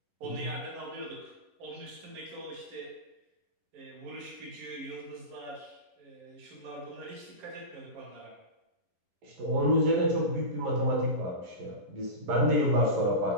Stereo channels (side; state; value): left; late; 11 ms